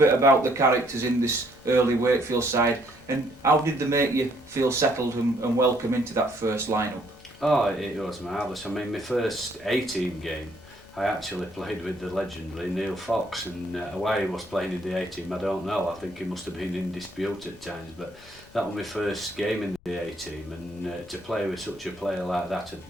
about the characters in this early Wakefield side, and how did they make you feel settled and welcome into that first lineup? Oh, it was marvellous. I mean, my first 18 game, I actually played with the legendary Neil Fox, and why he was playing in the 18, I don't know. I think he must have been in dispute at times, but that was my first game in the 18, and to play with such a player like that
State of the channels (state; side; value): noise; left; rumble, 28 dB below the sound